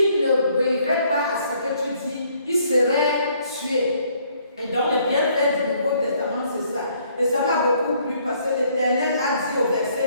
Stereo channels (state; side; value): inverted; both; correlation -0.65